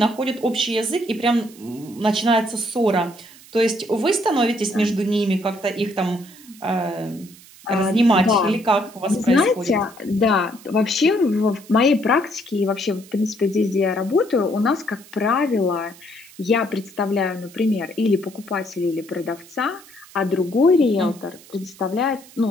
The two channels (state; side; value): noise; right; hiss, 22 dB below the sound